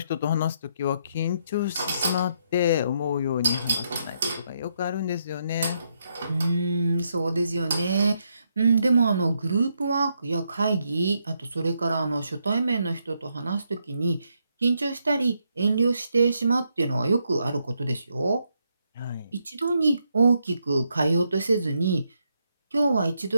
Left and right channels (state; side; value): inverted; both; correlation -0.78